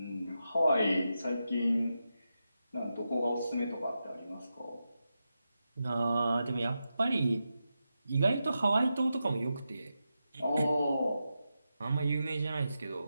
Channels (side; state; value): both; inverted; correlation -0.89